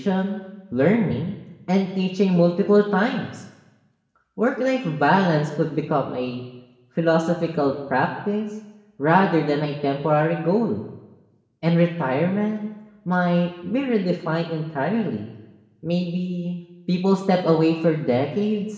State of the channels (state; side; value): identical; both; correlation 1.00